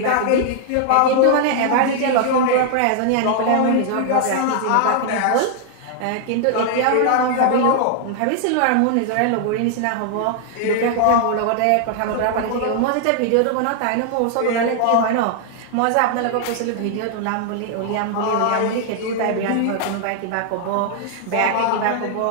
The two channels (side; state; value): both; different; correlation 0.00